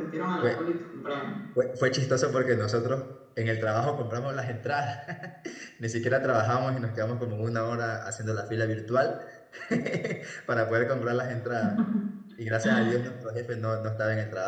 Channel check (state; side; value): identical; both; correlation 1.00